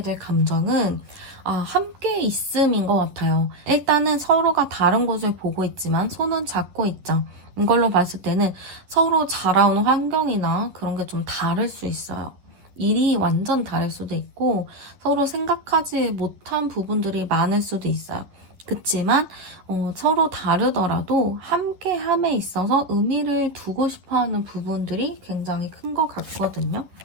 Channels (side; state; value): left; late; 11 ms